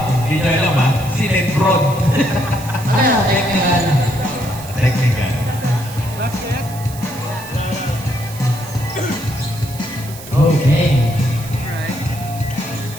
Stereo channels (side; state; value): right; noise; hiss, 16 dB below the sound